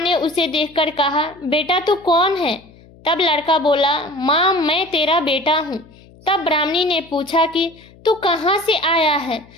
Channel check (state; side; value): noise; left; hum, 25 dB below the sound